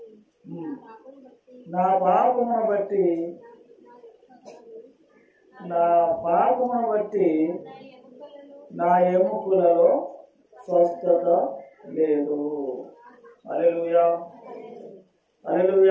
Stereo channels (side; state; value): both; identical; correlation 1.00